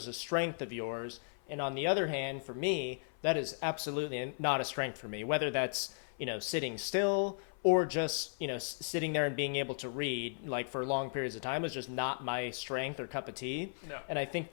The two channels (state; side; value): silent; right; 54 dB below the other